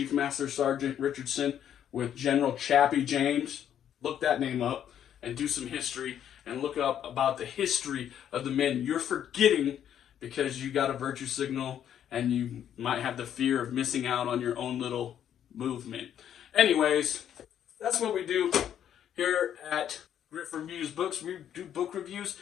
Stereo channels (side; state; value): right; quieter; 9.8 dB